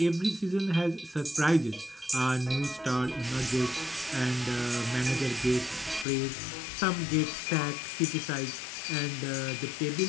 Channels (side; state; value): right; drops out; at 6.1 s